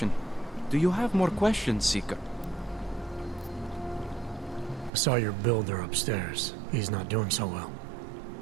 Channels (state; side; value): drops out; left; at 4.9 s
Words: Do you have more questions, Seeker? I saw your builder upstairs. He's not doing so well.